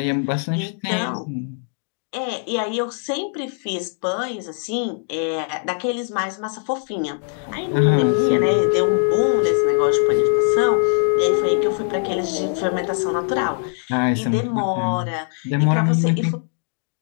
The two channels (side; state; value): right; silent; 57 dB below the other